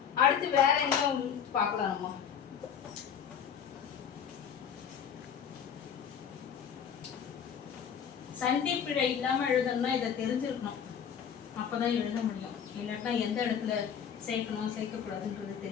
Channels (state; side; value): quieter; right; 7.9 dB